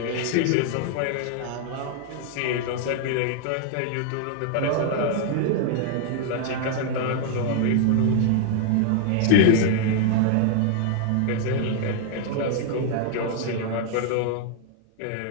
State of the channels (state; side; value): different; both; correlation 0.00